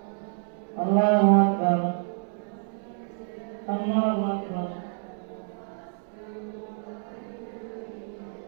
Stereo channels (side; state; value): left; silent; 59 dB below the other